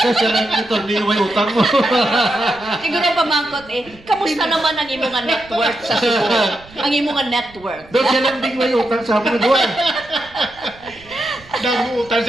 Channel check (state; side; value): noise; right; rumble, 24 dB below the sound